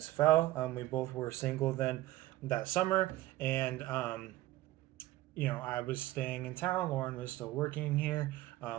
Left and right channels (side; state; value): left; quieter; 16.3 dB